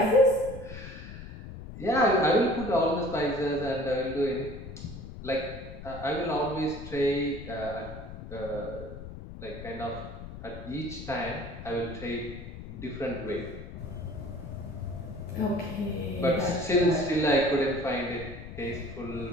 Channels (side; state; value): left; noise; rumble, 11 dB below the sound